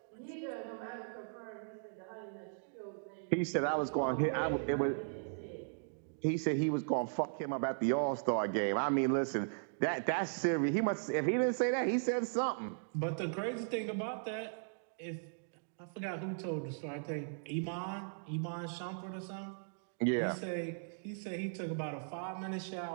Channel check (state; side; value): silent; left; digital silence